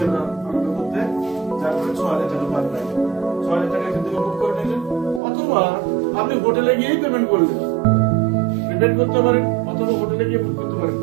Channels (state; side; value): drops out; left; at 5.2 s